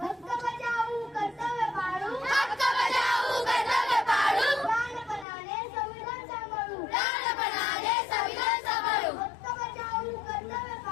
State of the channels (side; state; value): right; drops out; at 5.2 s